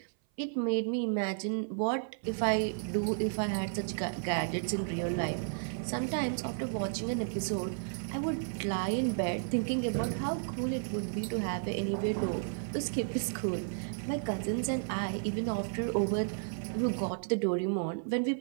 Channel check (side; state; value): left; silent; 56 dB below the other